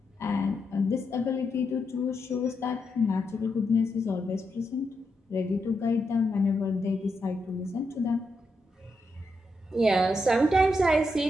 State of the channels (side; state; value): both; normal; correlation 0.83